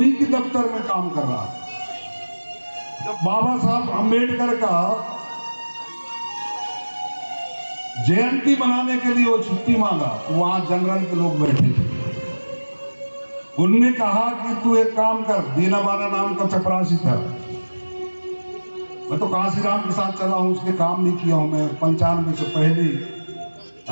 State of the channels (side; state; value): both; inverted; correlation -1.00